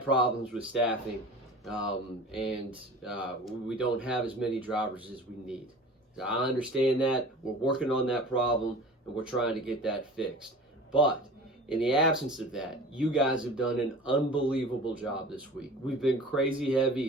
problems with staffing, and we don't have as many drivers as we need. So I understand that. We're working on that problem, and we're trying to get that fixed. But in the absence of that, you guys have done an unbelievable job this week. We've been crazy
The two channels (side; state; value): both; normal; correlation 0.40